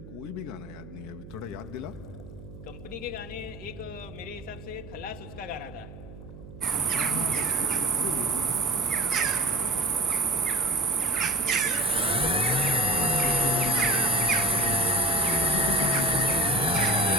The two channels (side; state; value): right; noise; hum, 16 dB below the sound